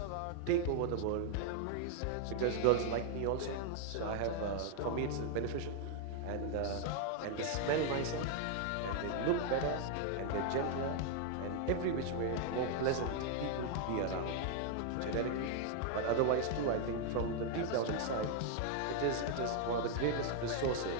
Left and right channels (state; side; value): different; both; correlation 0.00